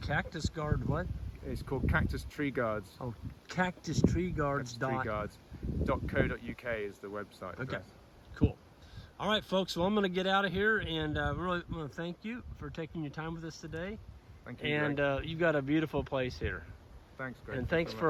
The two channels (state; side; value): identical; both; correlation 1.00